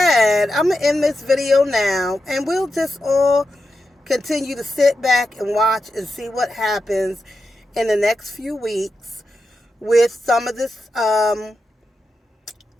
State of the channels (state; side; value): normal; both; correlation 0.89